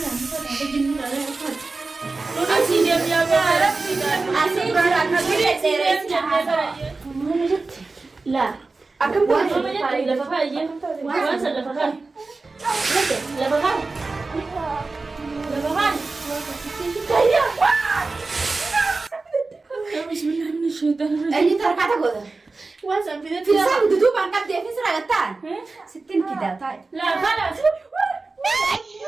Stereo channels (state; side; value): quieter; left; 3.7 dB